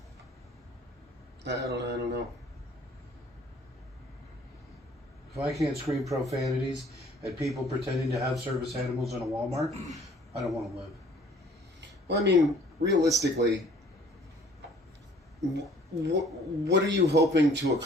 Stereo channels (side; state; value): both; normal; correlation 0.56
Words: I don't know. If I can't scream profanities at people pretending to have service animals in a Walmart, I don't want to live. Well, I mean, realistically, what are you hoping to